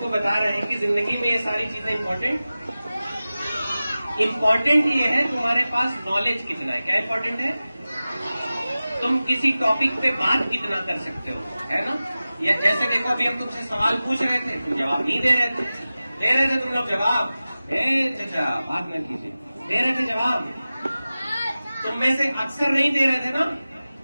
बता रहे हैं कि जिंदगी में ये सारी चीजें इंपॉर्टेंट ये है तुम्हारे पास नॉलेज कितना है। क्या इंपॉर्टेंट है? तुम किसी टॉपिक पे बात कितना कर सकते हो, है ना। या जैसे देखो अभी हम तुमसे सवाल पूछ रहे थे, तुम जवाब नहीं दे रहे थे तुम लोग जवाब। चाचा बात न कीजिए, दे रहे थे जवाब। तुम में से अक्सर नहीं दे रहे थे ना,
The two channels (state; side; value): inverted; both; correlation -0.96